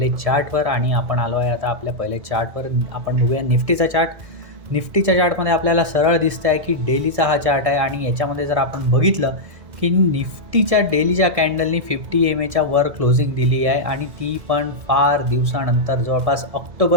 चार्टवर आणि आपण आलो आहे आता आपल्या पहिले चार्टवर. आपण बघूया निफ्टीचा चार्ट. निफ्टीच्या चार्टमध्ये आपल्याला सरळ दिसतं आहे की डेलीचा हा चार्ट आहे आणि याच्यामध्ये जर आपण बघितलं की निफ्टीच्या डेलीच्या कॅन्डलनी 50 EMAच्या वर क्लोजिंग दिली आहे आणि ती पण फार दिवसानंतर, जवळपास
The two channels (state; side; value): late; left; 1.6 ms